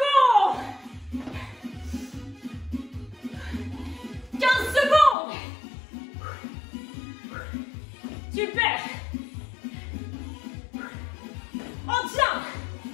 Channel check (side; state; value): right; drops out; at 5.2 s